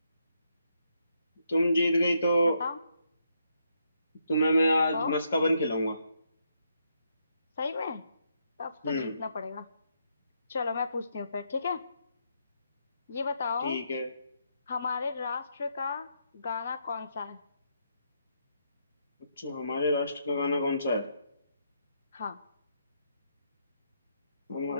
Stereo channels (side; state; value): both; inverted; correlation -0.77